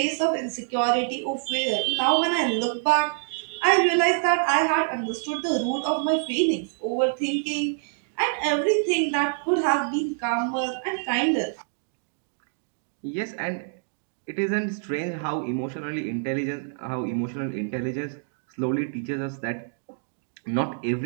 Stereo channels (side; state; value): left; silent; digital silence